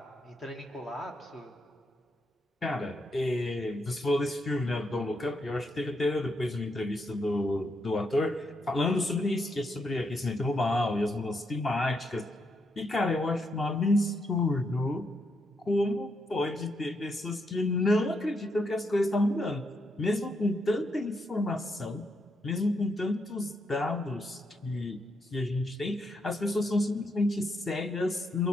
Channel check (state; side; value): normal; both; correlation 0.79